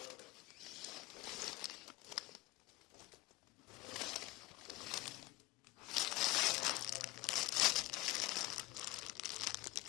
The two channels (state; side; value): quieter; right; 18.6 dB